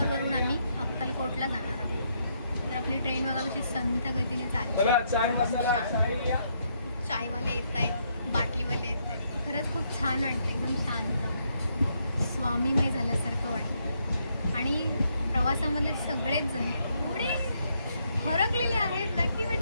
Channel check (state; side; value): inverted; both; correlation -0.75